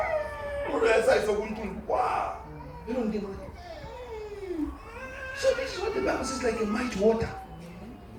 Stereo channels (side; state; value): both; identical; correlation 1.00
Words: Or else I saw one. Wow. You don't give money. So this is what the Bible says, like a mighty water.